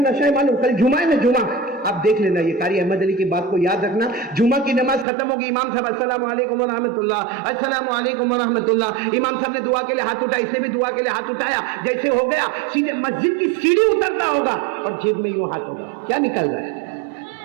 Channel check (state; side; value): drops out; left; at 5.1 s